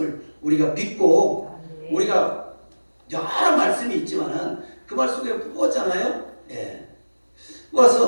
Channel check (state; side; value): inverted; both; correlation -1.00